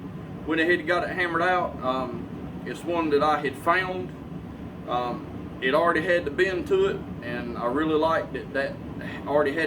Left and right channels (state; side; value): identical; both; correlation 1.00